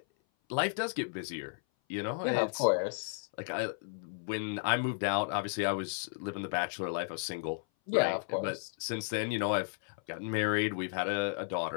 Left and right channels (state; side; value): silent; right; 55 dB below the other